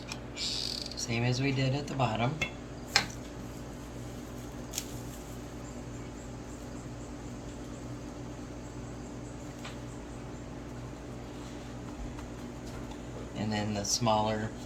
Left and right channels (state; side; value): identical; both; correlation 1.00